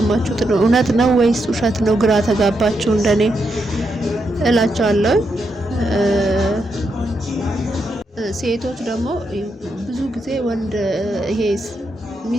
እውነት ነው ወይስ ውሸት ነው? ግራ ተጋባችሁ እንደኔ እላችኋለሁ። ሴቶች ደግሞ ብዙ ጊዜ ወንድ ይሄ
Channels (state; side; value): normal; both; correlation 0.82